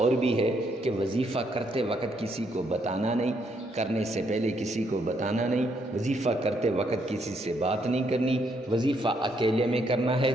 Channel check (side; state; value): both; normal; correlation 0.73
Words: بھی ہے کہ وظیفہ کرتے وقت کسی کو بتانا نہیں، کرنے سے پہلے کسی کو بتانا نہیں، وظیفہ کرتے وقت کسی سے بات نہیں کرنی، وظیفہ اکیلے میں کرنا ہے،